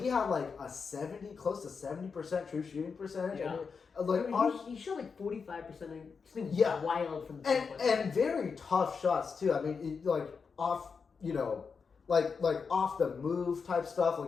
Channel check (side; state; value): right; quieter; 5.5 dB